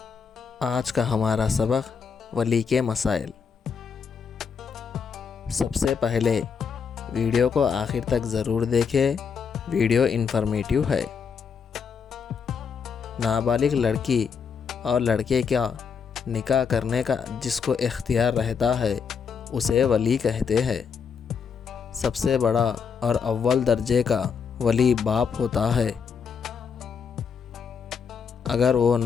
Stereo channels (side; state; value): right; quieter; 6.3 dB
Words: آج کا ہمارا سبق ولی کے مسائل۔ سب سے پہلے ویڈیو کو آخر تک ضرور دیکھیں، ویڈیو انفارمیٹیو ہے۔ نابالغ لڑکی اور لڑکے کا نکاح کرنے کا جس کو اختیار رہتا ہے اسے ولی کہتے ہیں۔ سب سے بڑا اور اول درجے کا ولی باپ ہوتا ہے۔ اگر وہ